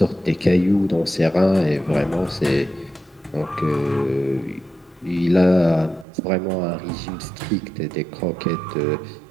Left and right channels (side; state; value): left; drops out; at 6.1 s